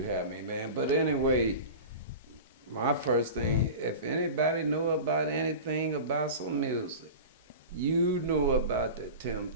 have me, man. But anyway, my first thing, if anybody knew about anything about some music, you knew about the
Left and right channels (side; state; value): both; inverted; correlation -0.32